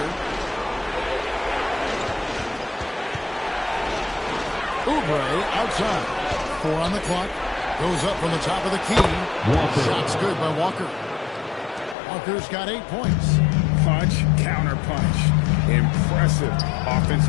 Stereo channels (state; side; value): drops out; right; at 12.0 s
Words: Oubre outside. 4 on the clock. Goes up from the top of the key. Walker. Shot's good by Walker. Walker's got 8 points. Punch, counter punch. Impressive